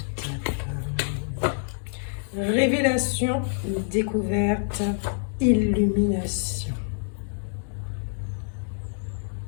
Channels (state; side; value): silent; right; digital silence